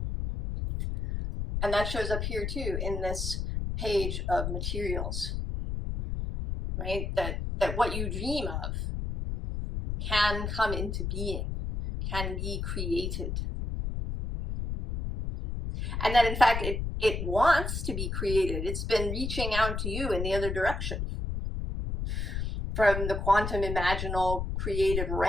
And that shows up here too in this page of materials, right? That what you dream of can come into being, can be created. And that in fact it wants to be created. It's been reaching out to you in the other direction. From the quantum imaginal creative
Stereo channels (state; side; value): noise; left; rumble, 3 dB below the sound